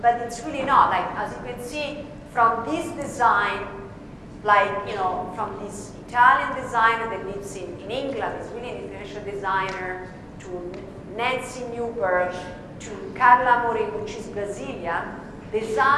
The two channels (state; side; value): identical; both; correlation 1.00